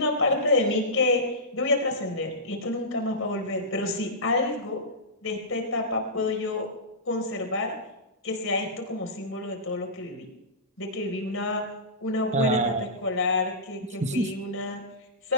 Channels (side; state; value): both; normal; correlation -0.18